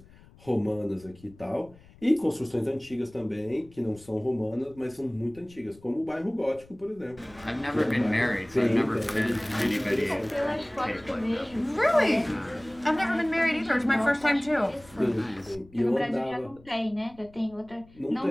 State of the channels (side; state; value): left; noise; rumble, 24 dB below the sound